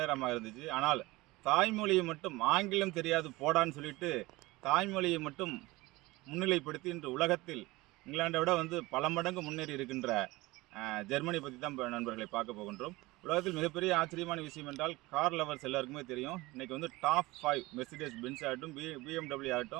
இருந்துச்சு. ஆனால் தாய்மொழியை மட்டும் ஆங்கிலம் தெரியாது போடான்னு சொல்லிட்டு தாய்மொழியை மட்டும் முன்னிலைப்படுத்தி இன்று உலகத்தில் இங்கிலாண்டை விட வந்து பல மடங்கு முன்னேறி இருக்கின்ற ஜெர்மனி பற்றி தான் இப்போ நண்பர்களை பார்க்க போகின்றோம். உலகத்தில் மிகப்பெரிய ஆச்சரியமான விஷயம் என்றால் கார் லவர்ஸ் எல்லாருக்குமே தெரியும். இன்றைக்கி வந்து டாப் 5 மெர்சிடிஸ் பென்ஸ் ஆகட்டும், BMW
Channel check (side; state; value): left; quieter; 20.9 dB